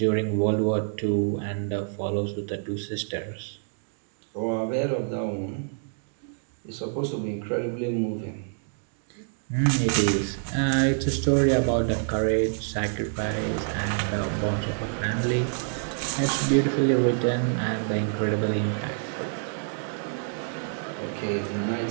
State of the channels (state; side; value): silent; left; digital silence